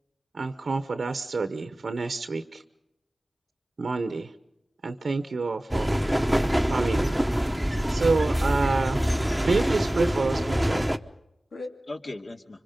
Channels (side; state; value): both; normal; correlation 0.97